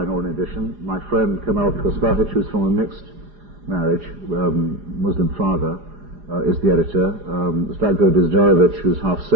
or an edition. My friend Kamal Kospahic, who's from a mixed marriage, Muslim father, is the editor. Zlatko Dizdarevic, who's half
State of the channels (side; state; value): left; late; 4.9 ms